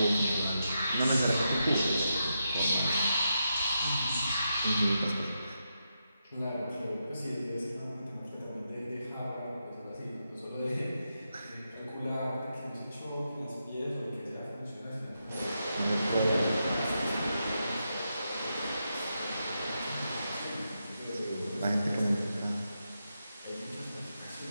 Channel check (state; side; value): inverted; both; correlation -0.85